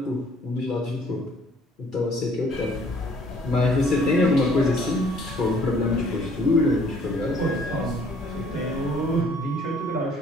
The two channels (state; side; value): normal; both; correlation 0.59